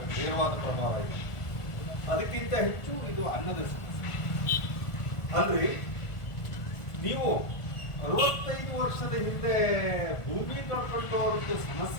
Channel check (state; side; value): late; right; 1.5 ms